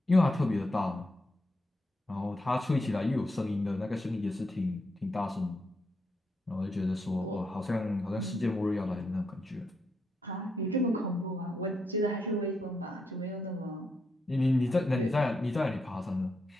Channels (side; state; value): both; normal; correlation 0.81